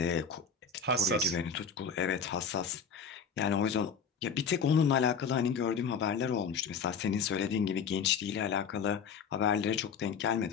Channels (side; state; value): right; quieter; 6.0 dB